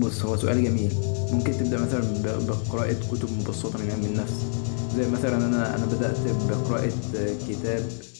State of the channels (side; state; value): right; silent; digital silence